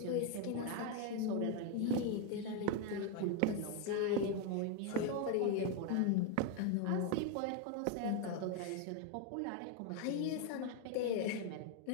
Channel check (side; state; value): both; different; correlation 0.01